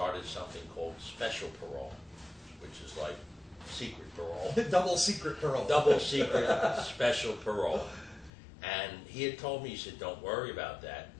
something called special parole, which is like secret parole. Double secret parole. Double secret special parole. And he had told me, he said, "Don't worry about that.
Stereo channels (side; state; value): right; drops out; at 8.3 s